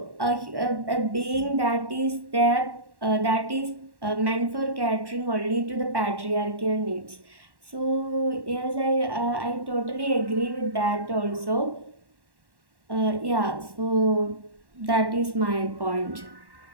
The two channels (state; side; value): late; left; 1.1 ms